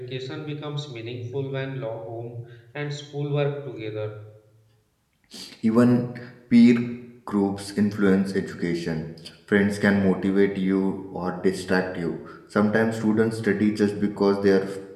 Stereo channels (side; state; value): both; identical; correlation 1.00